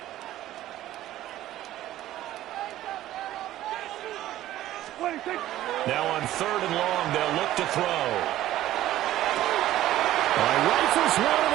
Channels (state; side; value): quieter; left; 14.0 dB